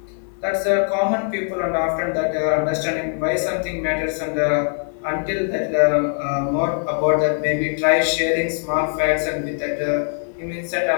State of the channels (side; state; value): right; silent; 59 dB below the other